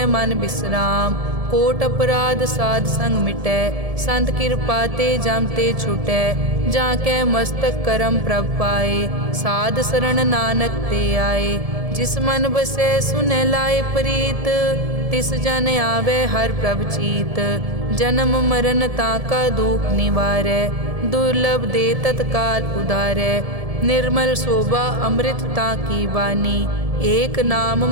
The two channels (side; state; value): left; late; 1.7 ms